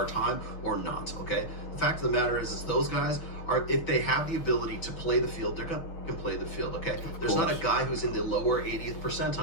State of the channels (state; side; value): late; right; 6.4 ms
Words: time or not, okay? The fact of the matter is those guys are, if they have the ability to play the field, they're gonna play the field, okay? There's not a guy who's in the lower 80th